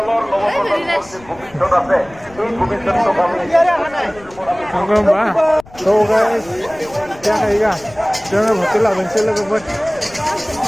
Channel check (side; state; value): left; noise; rumble, 23 dB below the sound